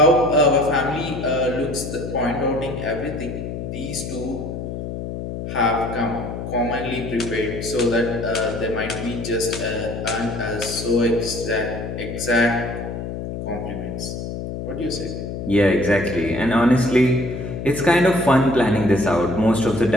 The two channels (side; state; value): left; noise; hum, 6 dB below the sound